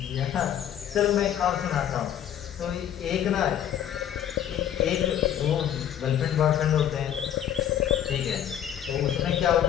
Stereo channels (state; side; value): quieter; right; 10.2 dB